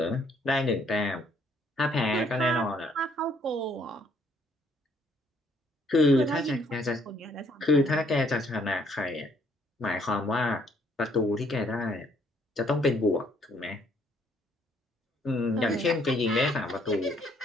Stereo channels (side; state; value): both; normal; correlation 0.66